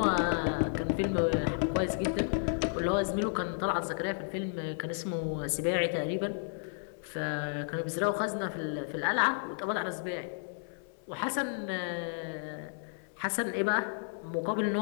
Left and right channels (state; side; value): silent; right; 56 dB below the other